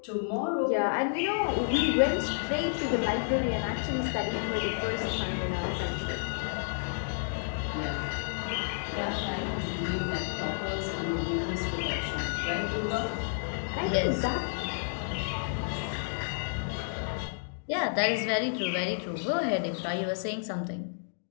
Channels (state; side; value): silent; right; digital silence